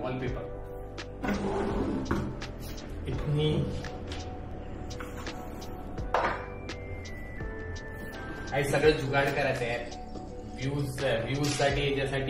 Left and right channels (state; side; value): identical; both; correlation 1.00